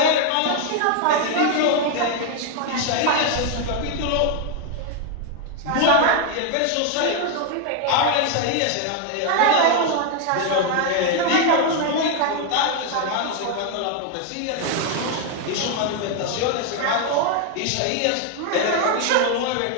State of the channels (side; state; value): both; different; correlation 0.01